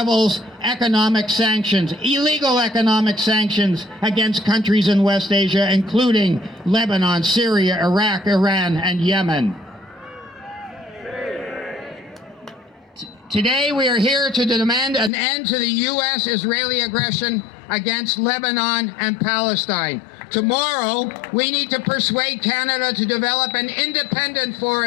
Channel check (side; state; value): right; drops out; at 15.1 s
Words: economic sanctions, illegal economic sanctions against countries in West Asia, including Lebanon, Syria, Iraq, Iran, and Yemen. Today we are here to demand an end to the U.S.-Israeli aggression against Lebanon and Palestine. Tomorrow, we need to persuade Canada to develop an independent